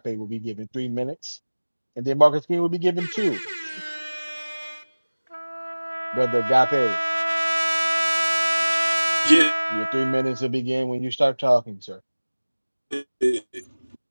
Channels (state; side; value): inverted; both; correlation -1.00